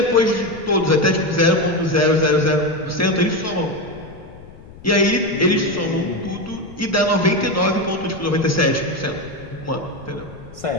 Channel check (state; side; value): noise; left; rumble, 19 dB below the sound